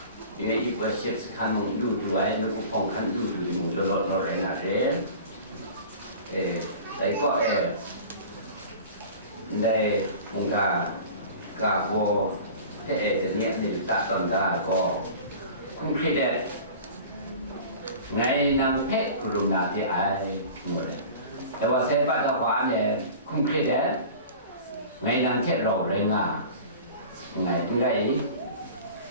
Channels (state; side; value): inverted; both; correlation -0.40